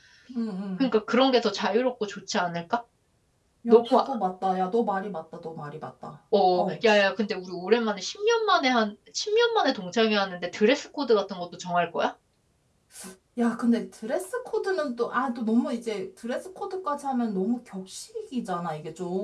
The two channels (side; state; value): both; identical; correlation 1.00